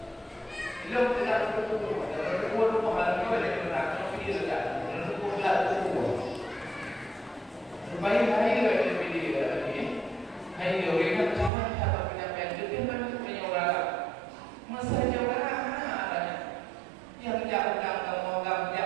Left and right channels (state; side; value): drops out; left; at 11.5 s